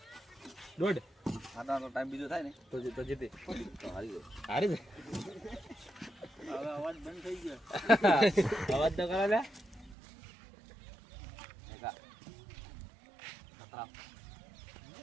દોઢ આનો તો ટાઈમ બીજો થાય ને તો જીતી તો હારી ગયો હારી દે હવે અવાજ બંધ થઈ ગયો અવાજ તો કરે લે એકા ખતરામ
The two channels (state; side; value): drops out; left; at 10.0 s